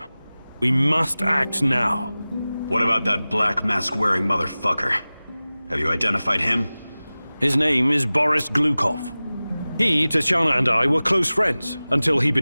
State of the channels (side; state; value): both; inverted; correlation -0.98